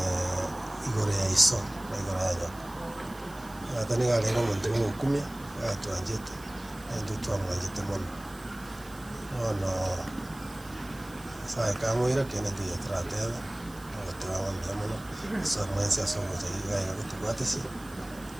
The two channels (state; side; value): noise; right; hiss, 21 dB below the sound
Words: igore ya iso na igore ya nyoko atani gale no muntu mukumya atwanjete ende twamwanjete mono ono sai kamwira kene ndiye tratela otawa ndamano so mwensi asomo tayiga ya kutubwatesi